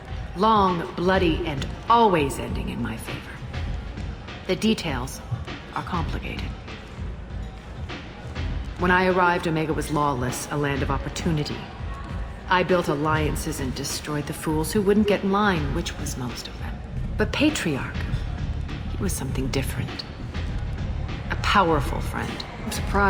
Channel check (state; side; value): identical; both; correlation 1.00